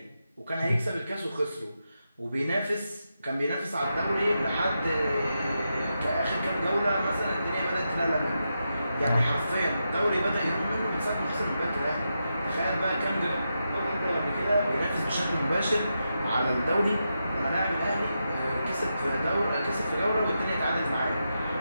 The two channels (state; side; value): inverted; both; correlation -0.87